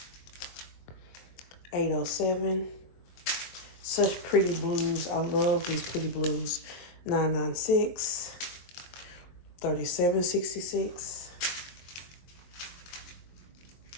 $8.07. Such pretty blues. I love these pretty blues. $9.96. $37.66.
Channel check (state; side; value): late; right; 23 ms